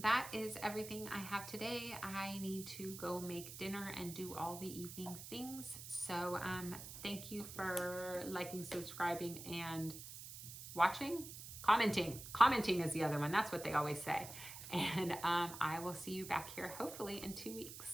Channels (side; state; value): right; noise; hiss, 11 dB below the sound